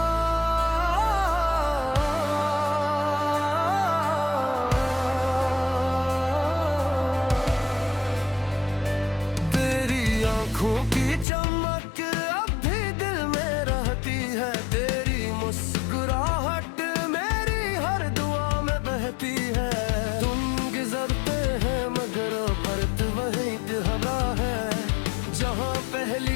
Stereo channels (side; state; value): right; drops out; at 11.2 s